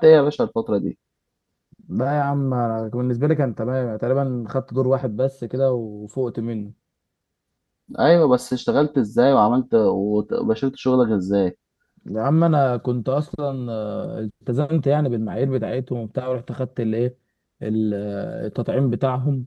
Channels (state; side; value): identical; both; correlation 1.00